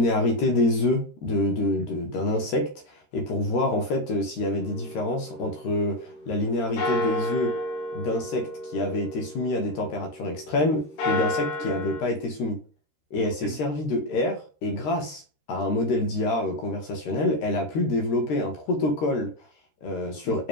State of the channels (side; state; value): right; late; 13 ms